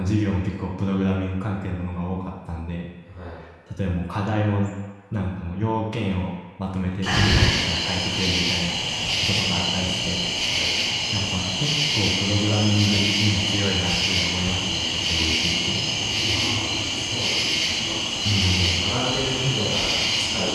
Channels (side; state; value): both; identical; correlation 1.00